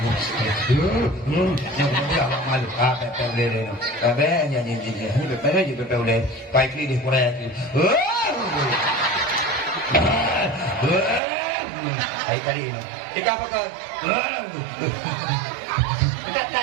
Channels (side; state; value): left; drops out; at 11.2 s